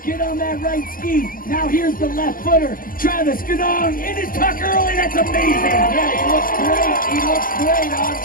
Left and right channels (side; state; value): right; late; 0.41 ms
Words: Get on that right ski. Now here's the left footer. Travis Ganong in his tuck early. That's amazing. Yeah, he looks great. He looks great. On